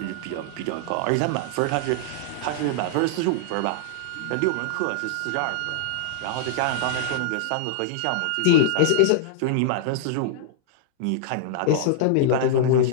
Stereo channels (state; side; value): different; both; correlation -0.01